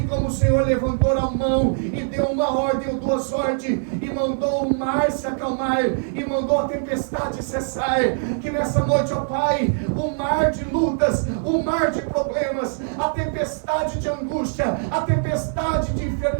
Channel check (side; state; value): left; silent; digital silence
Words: como o Senhor levantou a mão e deu uma ordem ou duas ordens, e mandou o mar se acalmar, e mandou a tempestade cessar. Que nessa noite, ó Pai, o mar de lutas, o mar de problemas, a tempestade de angústia, a tempestade de